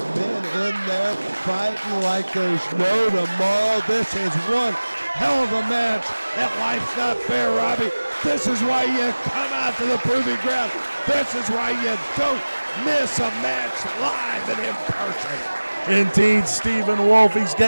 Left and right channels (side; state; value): both; inverted; correlation -1.00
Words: men in there fighting like there's no tomorrow. This is one hell of a match, and life's not fair, Robbie. This is why you come out to the proving ground. This is why you don't miss a match live and in person. Indeed, Stephen Wolf, he's